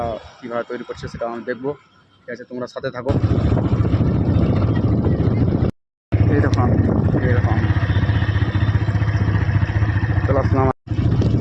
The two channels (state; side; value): identical; both; correlation 1.00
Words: কীভাবে তৈরি করছে সেটা আমি দেখবো, ঠিক আছে। তোমরা সাথে থাকো। এই দেখো আমি, এই দেখো আমি চলে আসলাম।